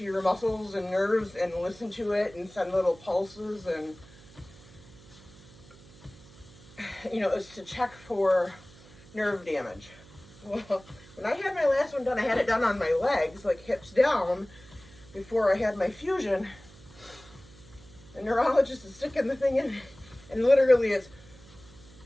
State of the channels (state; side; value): noise; right; hum, 22 dB below the sound